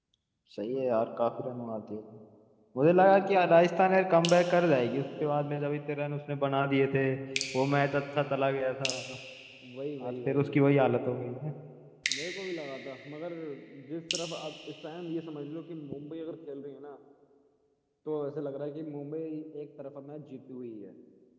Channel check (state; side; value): identical; both; correlation 1.00